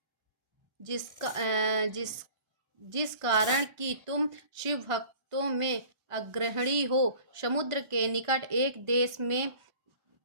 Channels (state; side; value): late; left; 1.4 ms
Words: जिस कारण कि तुम शिव भक्तों में अग्रणी हो। समुद्र के निकट एक देश में